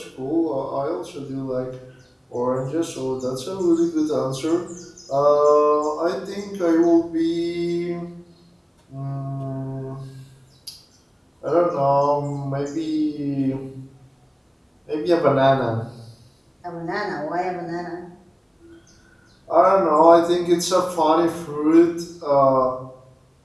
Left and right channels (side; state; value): both; identical; correlation 1.00